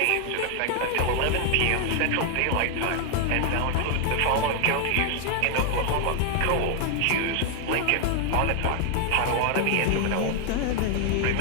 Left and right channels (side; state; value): both; different; correlation 0.00